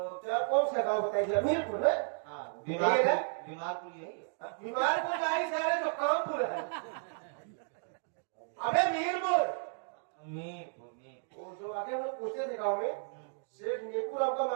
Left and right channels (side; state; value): left; silent; digital silence